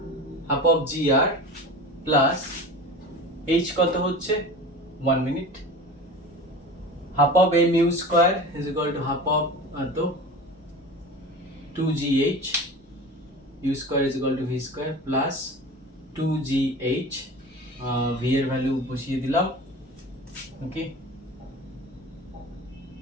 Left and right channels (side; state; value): both; normal; correlation 0.34